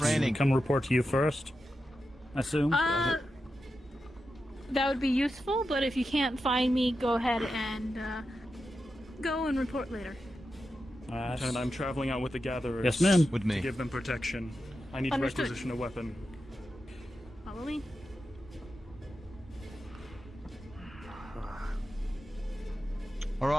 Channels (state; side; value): normal; both; correlation 0.89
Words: Come report to you first, I assume? That would be useful, but if you can't find me, go ahead and go and report later. And I'm traveling out with the gatherers. Yes, ma'am. With me. To give them protection. I need Understood. to requisition a weapon. Follow me.